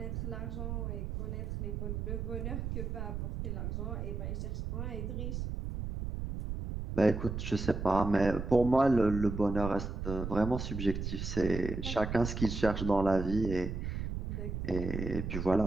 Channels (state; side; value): noise; right; rumble, 4 dB below the sound